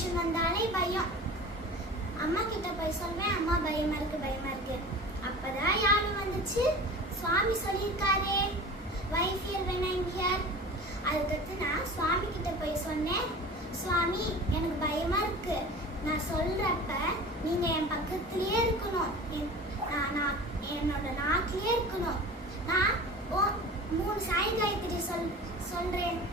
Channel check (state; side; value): normal; both; correlation 0.37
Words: வந்தாலே பயம். அம்மா கிட்ட போய் சொல்வேன், அம்மா பயமா இருக்கு. அப்பதான் யாரும் வந்துச்சு, சுவாமி சொல்லியிருக்காரே wife here when I am here. அதுக்கடுத்து நான் சுவாமி கிட்ட போய் சொன்னேன், சுவாமி எனக்கு பயமா இருக்கு, நான் சொல்றப்ப நீங்க என் பக்கத்திலேயே இருக்கணும், நான் என்னோட நாட்டிலேயே இருக்கணும். நான் 3 சாய் காயத்ரி சொல்றேன்